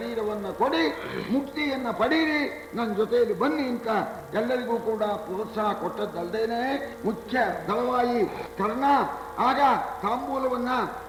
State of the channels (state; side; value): identical; both; correlation 1.00